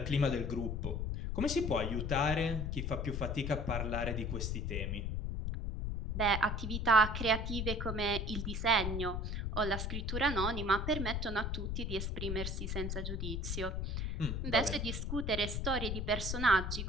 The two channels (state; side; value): noise; left; rumble, 2 dB below the sound